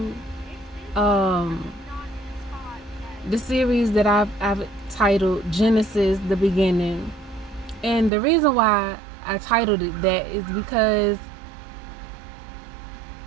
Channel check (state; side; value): drops out; left; at 8.1 s